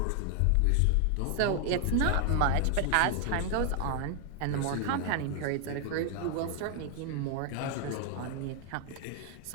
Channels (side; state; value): both; different; correlation 0.00